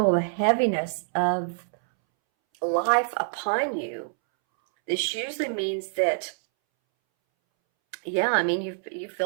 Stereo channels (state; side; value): silent; left; 61 dB below the other